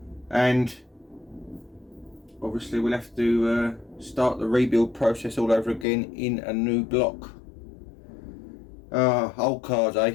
And obviously we'll have to start the rebuild process all over again in a new block. Old cars,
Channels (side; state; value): right; drops out; at 5.9 s